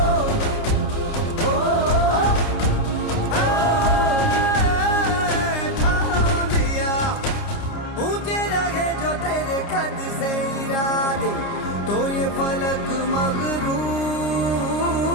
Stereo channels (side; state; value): right; late; 29 ms